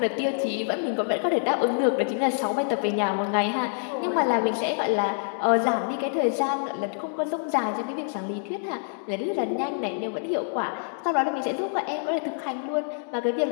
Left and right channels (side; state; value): right; silent; 61 dB below the other